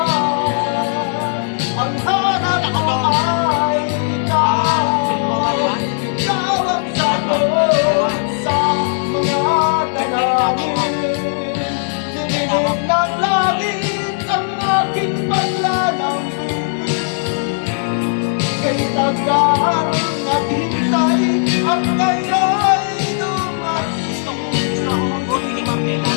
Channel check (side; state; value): right; silent; 64 dB below the other